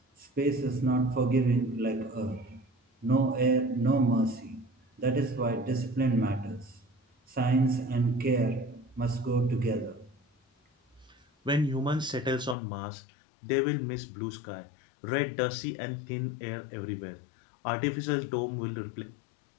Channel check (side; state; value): right; drops out; at 12.6 s